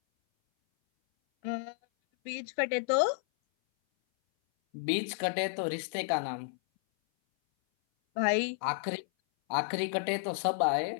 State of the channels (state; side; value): silent; right; 57 dB below the other